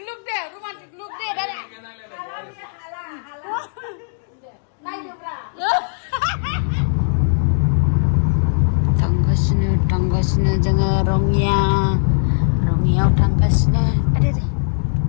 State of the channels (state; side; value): silent; right; digital silence